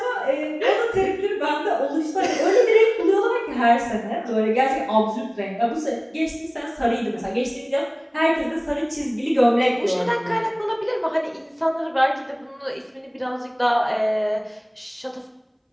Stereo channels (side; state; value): both; identical; correlation 1.00